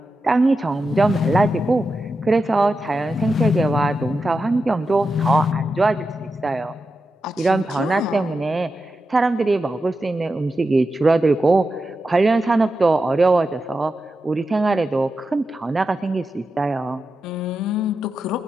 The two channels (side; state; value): both; normal; correlation 0.90